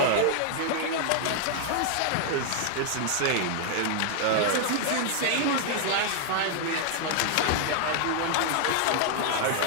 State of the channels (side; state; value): both; different; correlation 0.00